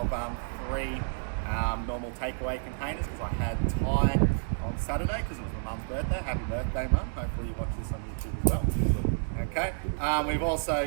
3 normal takeaway containers because I had Thai on Saturday because it was my mum's birthday. Happy birthday, Mum. Hopefully you watch this on YouTube as well. Okay, we've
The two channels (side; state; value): left; silent; digital silence